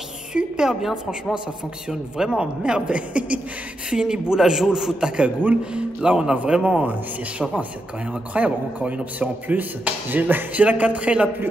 super bien, franchement, ça fonctionne vraiment à merveille. Fini boula joule, fout ta cagoule. Là on a vraiment, c'est chauffant, c'est quand même incroyable. Encore une option en plus. J'ai la 4L la plus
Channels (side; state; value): both; normal; correlation 0.85